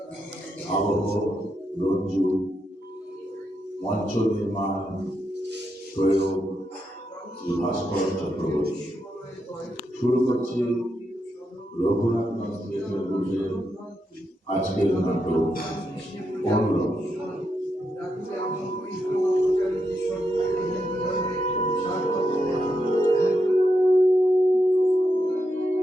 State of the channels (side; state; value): both; normal; correlation 0.83